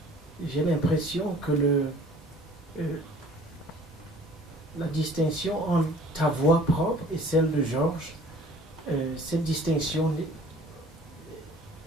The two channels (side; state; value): both; normal; correlation 0.51